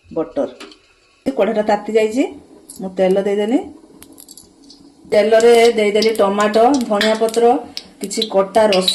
बटर कढ़ाटा ताती जाइए मु तेल देदेली तेल रे देदेली टमाटो धनिया पत्र किसी कटा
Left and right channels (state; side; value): identical; both; correlation 1.00